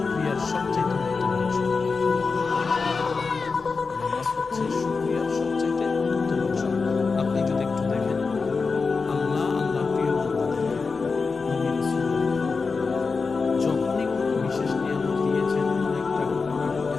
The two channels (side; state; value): right; quieter; 4.6 dB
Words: সবচেয়ে উত্তম অংশ। নামাজ হচ্ছে শুকরিয়ার সবচেয়ে উত্তম অংশ। আপনি যদি একটু দেখেন আল্লাহ প্রিয় বান্দাদের নবী রাসূল যখনই কোনো বিশেষ নিয়ামত দিয়েছেন, অনেকটা ঘটনা